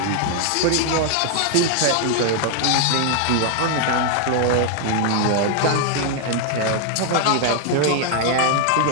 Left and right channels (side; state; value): both; different; correlation 0.00